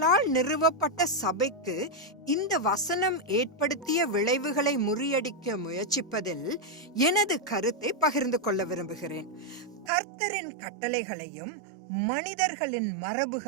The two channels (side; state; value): left; drops out; at 9.9 s